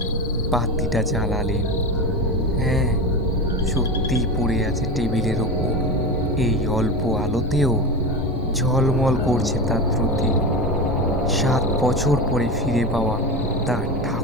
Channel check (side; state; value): both; normal; correlation 0.22